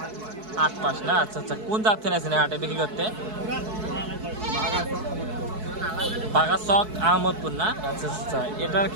8 মাস না? আচ্ছা আচ্ছা, কোন জাত থেকে আছেন হাটে বিক্রি করতে? বাগাচক আহমদপুর না? আচ্ছা আচ্ছা, এটার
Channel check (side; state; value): left; late; 4.6 ms